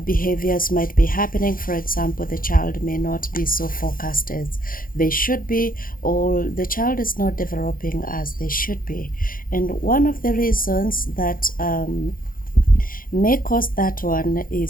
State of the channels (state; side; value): late; right; 0.41 ms